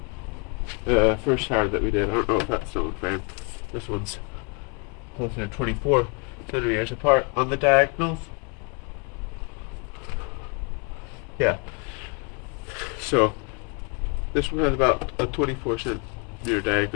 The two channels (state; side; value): quieter; right; 34.3 dB